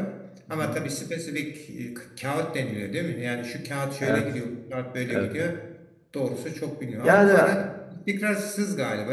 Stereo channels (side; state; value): both; identical; correlation 1.00